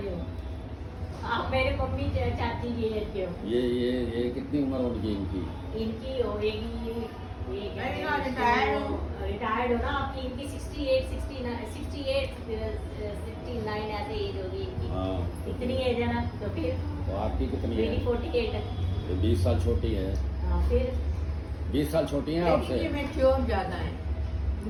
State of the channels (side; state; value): both; identical; correlation 1.00